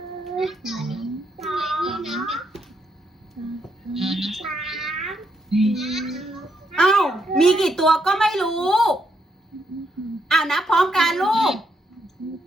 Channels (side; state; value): both; normal; correlation 0.78